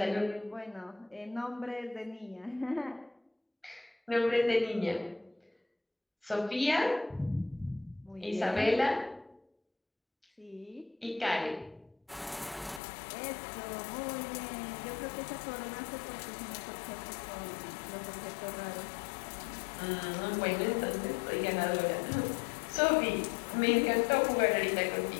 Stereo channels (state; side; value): drops out; right; at 12.8 s